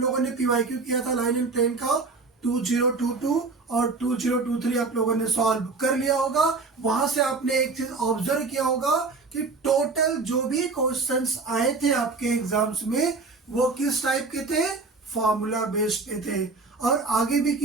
ने PYQ किया था लाइन एंड प्लेन का 2022 और 2023 आप लोगों ने सॉल्व कर लिया होगा। वहां से आपने एक चीज ऑब्जर्व किया होगा कि टोटल जो भी क्वेश्चंस आए थे आपके एग्जाम्स में वो किस टाइप के थे, फॉर्मूला बेस्ड पे थे, और आगे भी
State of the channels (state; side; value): quieter; left; 4.0 dB